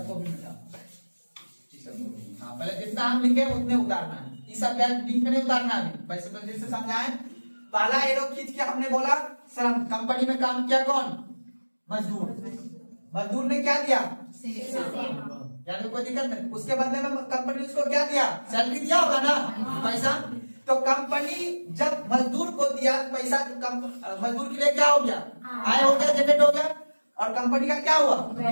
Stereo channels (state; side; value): inverted; both; correlation -1.00